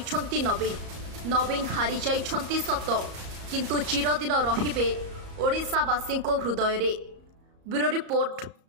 नवीन हारी जाइछंती सत किंतु चिरदिन रहिबे ओडिशावासी हृदय रे। Bureau report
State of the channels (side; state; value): left; late; 34 ms